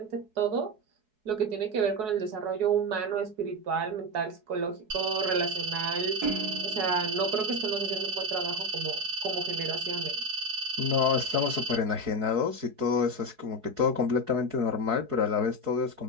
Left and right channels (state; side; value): late; left; 4.7 ms